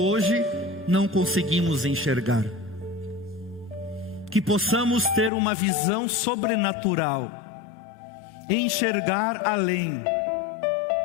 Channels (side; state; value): right; drops out; at 5.3 s